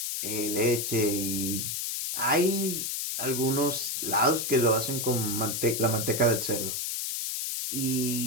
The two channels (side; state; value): left; noise; hiss, 2 dB below the sound